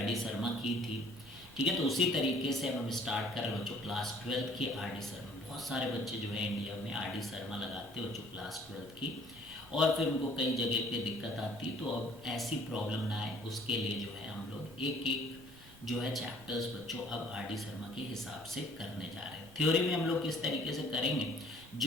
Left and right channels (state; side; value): normal; both; correlation 0.57